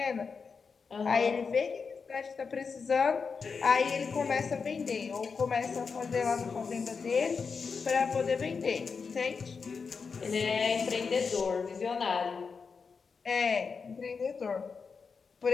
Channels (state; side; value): quieter; right; 5.3 dB